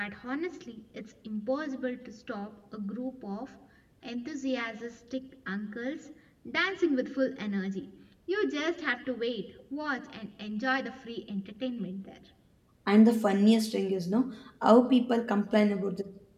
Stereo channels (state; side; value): identical; both; correlation 1.00